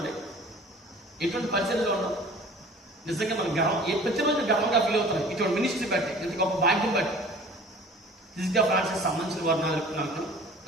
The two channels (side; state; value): both; normal; correlation 0.46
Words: ఎటువంటి పరిస్థితిలో ఉన్నాం? నిజంగా మనం ప్రతిరోజు గర్వంగా ఫీల్ అవుతాం ఇటువంటి మినిస్ట్రీ బట్టి, ఇంత గొప్ప భాగ్యం బట్టి. ఫిజికల్ ఫ్రాన్సిస్ సంబంధించిన వారు